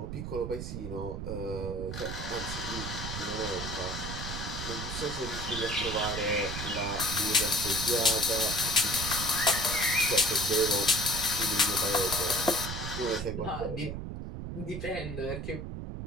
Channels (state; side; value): noise; right; rumble, 6 dB below the sound